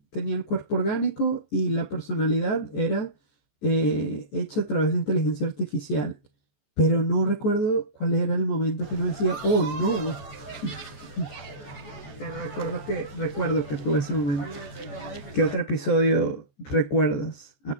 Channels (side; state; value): right; late; 14 ms